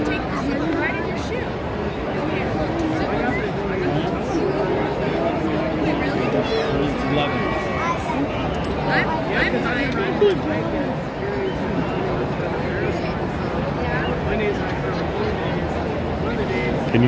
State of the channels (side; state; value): both; identical; correlation 1.00